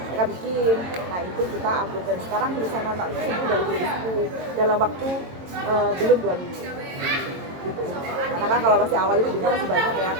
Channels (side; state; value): left; late; 22 ms